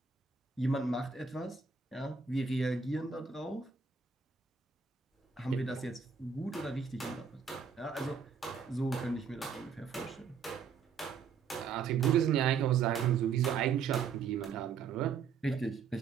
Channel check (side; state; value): left; quieter; 6.0 dB